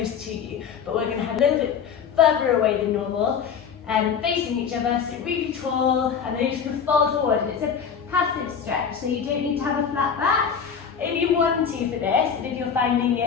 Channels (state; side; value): quieter; right; 7.0 dB